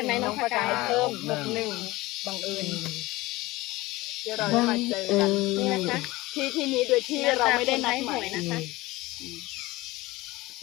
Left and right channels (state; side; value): quieter; right; 19.8 dB